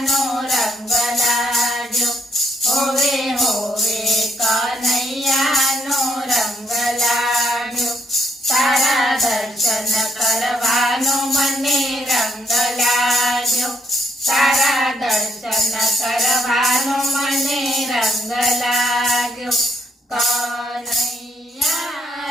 રંગ લાગ્યો, હોવે હોવે કનૈયાનો રંગ લાગ્યો, તારા દર્શન કરવાનો મને રંગ લાગ્યો, તારા દર્શન કરવાનો મને રંગ લાગ્યો, કનૈયા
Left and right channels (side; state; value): both; normal; correlation 0.74